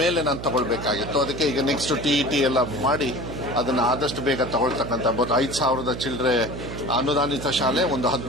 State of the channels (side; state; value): right; noise; hum, 8 dB below the sound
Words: ಮೇಲೆ ನಾನು ತಗೊಳ್ಬೇಕಾಗಿತ್ತು. ಅದಕ್ಕೆ ಈಗ ನೆಕ್ಸ್ಟ್ ಟಿಇಟಿ ಎಲ್ಲ ಮಾಡಿ ಅದನ್ನು ಆದಷ್ಟು ಬೇಗ ತಗೊಳ್ತಕ್ಕಂಥ 5,000 ಚಿಲ್ಲರೆ ಅನುದಾನಿತ ಶಾಲೆ, ಒಂದು